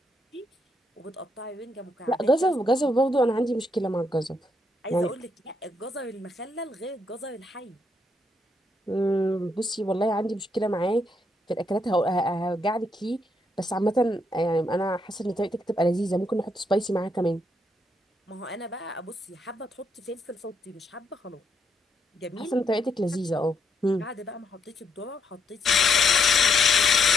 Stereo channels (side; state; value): both; normal; correlation 0.76